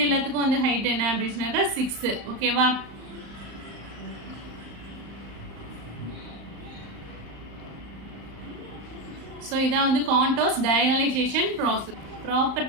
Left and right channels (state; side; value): late; left; 35 ms